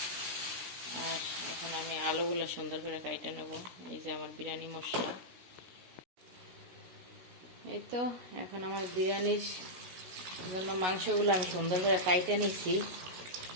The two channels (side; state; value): left; late; 16 ms